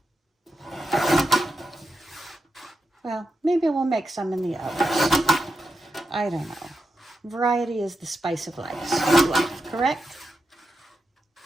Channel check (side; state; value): both; normal; correlation 0.88